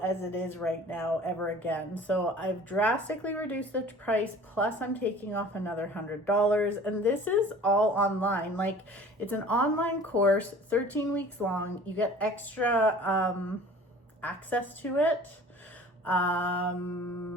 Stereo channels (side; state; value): both; normal; correlation 0.46